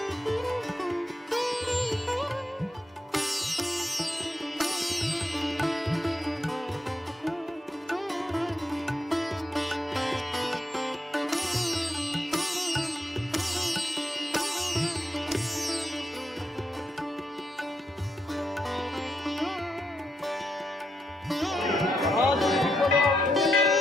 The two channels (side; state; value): both; normal; correlation 0.81